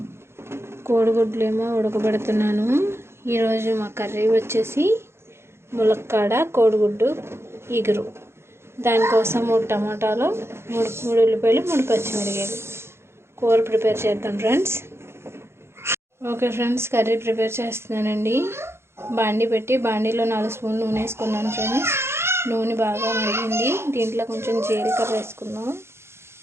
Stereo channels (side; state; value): left; late; 0.12 ms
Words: కోడిగుడ్లు ఏమో ఉడకబెడుతున్నాను. ఈరోజు మా కర్రీ వచ్చేసి ములక్కాడ కోడిగుడ్డు ఇగురు. దానికోసం 3 టమాటాలు, 3 ఉల్లిపాయలు, 3 పచ్చిమిరపకాయలు కూర ప్రిపేర్ చేద్దాం friends. Okay friends, curry prepare చేస్తున్నానండి. బాండీ పెట్టి బాండీలో 4 స్పూన్లు నూనె వేసుకున్నాను ఫ్రెండ్స్. నూనె బాగా మరిగింది. దీంట్లో కొంచెం జీలకర్ర వేసుకున్నాం.